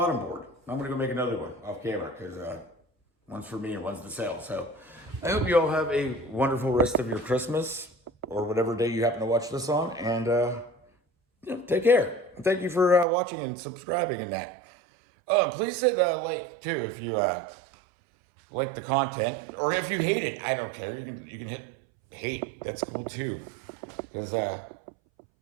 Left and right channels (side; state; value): left; drops out; at 13.1 s